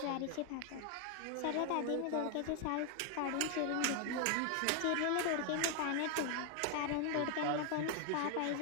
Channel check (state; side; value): different; both; correlation 0.00